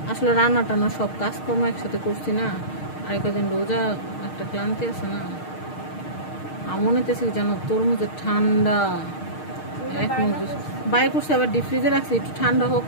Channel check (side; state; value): right; late; 6.5 ms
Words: আসলে রান্না টান্না সব কাজকর্ম একসাথে করছি না, আর কদিন রোজা, একটা ক্লান্তি আছে না। মনে হতেছি যেন তরমুজের ঠান্ডা এক মজুস বাই করছে, আবার ডিপ ফ্রিজে রাখছি, একটু ঠান্ডা হোক,